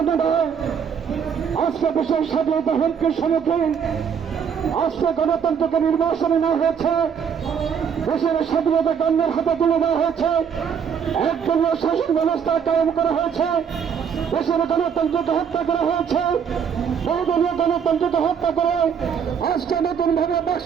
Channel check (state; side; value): quieter; left; 7.3 dB